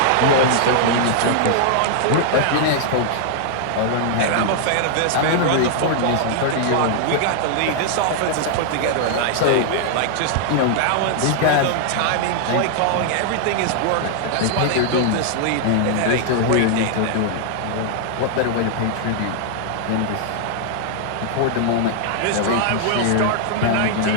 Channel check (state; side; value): different; both; correlation -0.01